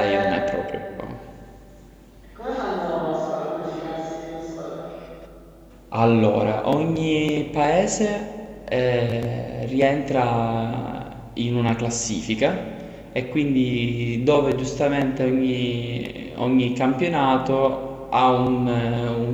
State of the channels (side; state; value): both; identical; correlation 1.00